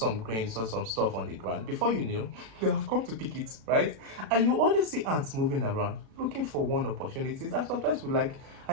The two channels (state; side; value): late; left; 36 ms